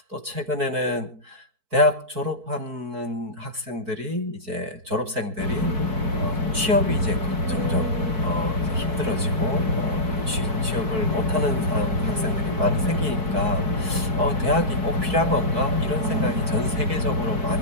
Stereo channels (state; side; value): late; left; 4.6 ms